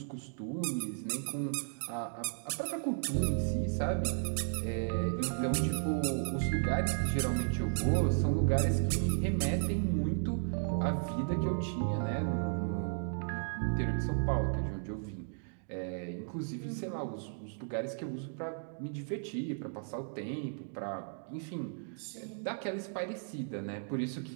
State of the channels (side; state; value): left; silent; digital silence